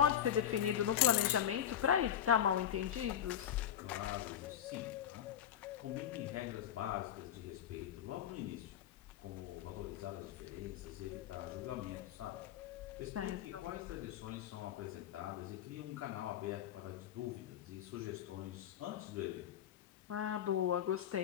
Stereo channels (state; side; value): quieter; right; 10.2 dB